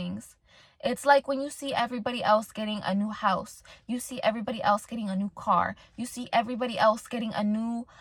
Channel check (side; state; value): both; identical; correlation 1.00